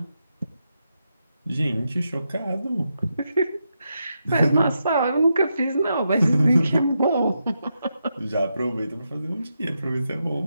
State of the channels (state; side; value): inverted; both; correlation -0.85